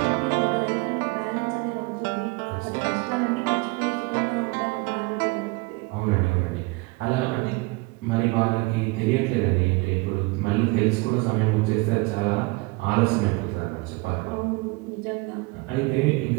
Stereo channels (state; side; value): quieter; left; 25.2 dB